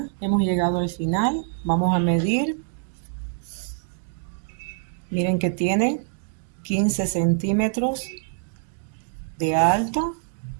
hemos llegado al final. Vamos a medir Miren que tiene 15 centímetros de alto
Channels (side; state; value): left; silent; digital silence